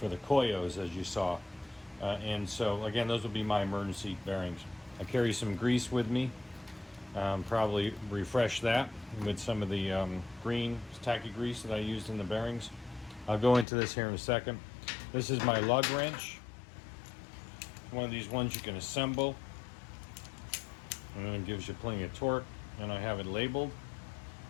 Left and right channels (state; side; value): drops out; right; at 13.7 s